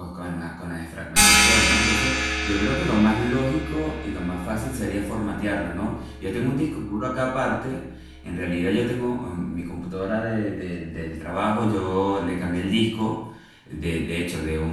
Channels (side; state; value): both; identical; correlation 1.00